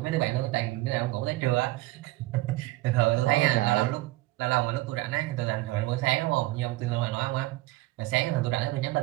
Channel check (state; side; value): quieter; left; 18.9 dB